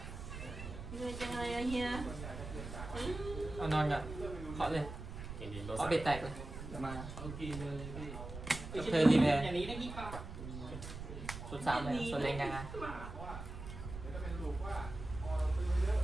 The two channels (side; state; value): right; noise; rumble, 9 dB below the sound